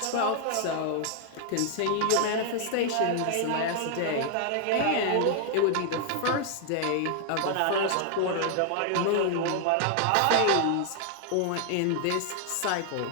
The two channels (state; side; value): different; both; correlation 0.00